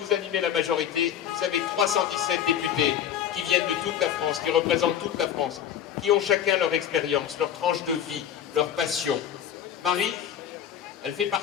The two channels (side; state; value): right; quieter; 9.5 dB